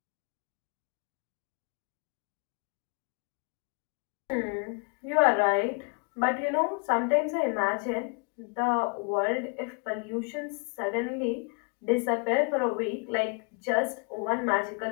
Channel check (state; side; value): quieter; right; 36.1 dB